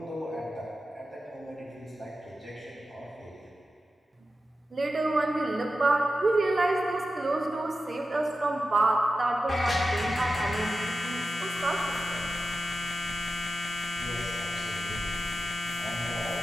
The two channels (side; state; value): both; normal; correlation 0.92